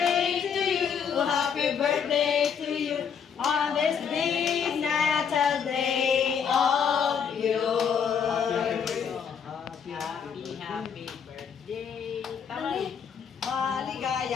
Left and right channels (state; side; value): quieter; right; 7.2 dB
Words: to you, happy birthday to you. On this big Natal day of yours. Happy birthday. Tama.